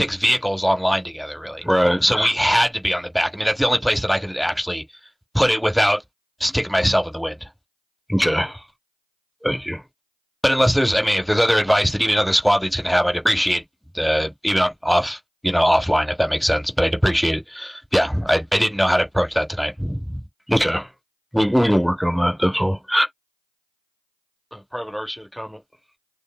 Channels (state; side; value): identical; both; correlation 1.00